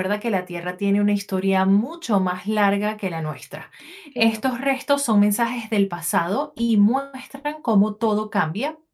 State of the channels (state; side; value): identical; both; correlation 1.00